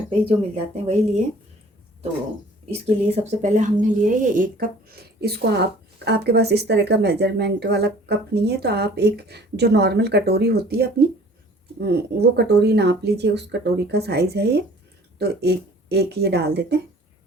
पे ही जो मिल जाते हैं वही लिए। तो इसके लिए सबसे पहले हमने लिया है ये 1 कप। इसको आपके पास इस तरह का मेजरमेंट वाला कप नहीं है तो आप एक जो नॉर्मल कटोरी होती है अपनी, वो कटोरी नाप लीजिए, उस कटोरी का साइज़ है ये। तो एक ये डाल देते हैं,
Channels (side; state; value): both; normal; correlation 0.51